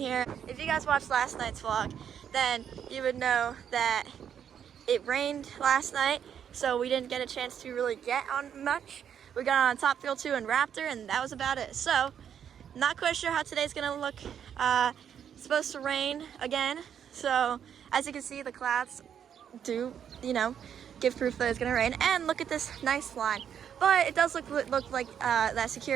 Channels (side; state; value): left; quieter; 8.6 dB